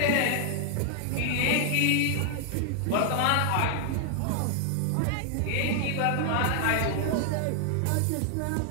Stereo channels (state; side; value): different; both; correlation 0.00